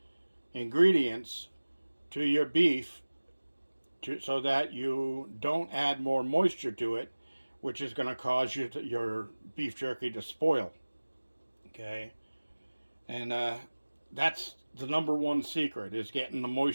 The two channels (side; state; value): both; inverted; correlation -1.00